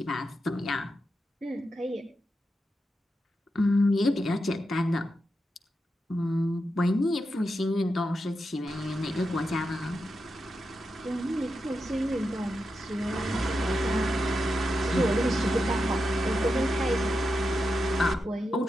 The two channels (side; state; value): both; normal; correlation 0.88